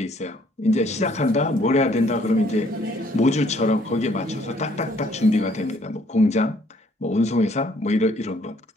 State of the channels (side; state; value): both; normal; correlation 0.64